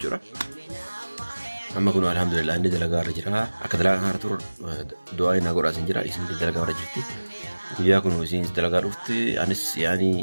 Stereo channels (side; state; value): both; inverted; correlation -1.00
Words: أما كنا الحمد لله عندي دلقة رجرها أكدلا هارتور دعاء نقول أسنج جرا اسم دلقة رجرتي وياكم وسين دلقة رفتي أنس